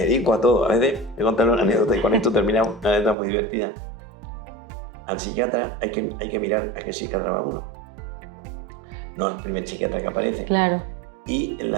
dedico a todo. A veces me contan una anécdota y con esto terminamos, una anécdota muy divertida. Al psiquiatra hay que mirar a qué psiquiatra va uno. No al primer psiquiatra que aparece. Claro. Y a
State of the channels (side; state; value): left; drops out; at 3.2 s